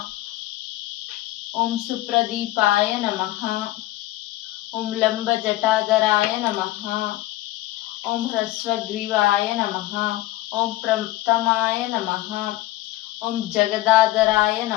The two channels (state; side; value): quieter; right; 16.7 dB